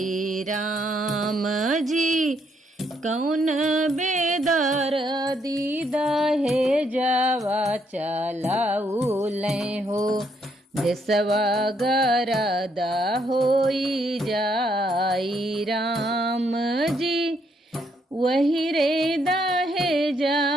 राम जी। कौन बेदर दीदा हे जावा चलाउले हो देशवा गरद होई जाई राम जी। वही रे दहे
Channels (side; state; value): both; normal; correlation 0.73